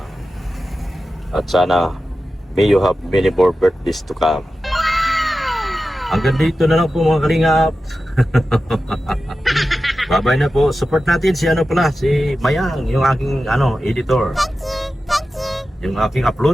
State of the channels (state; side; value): normal; both; correlation 0.93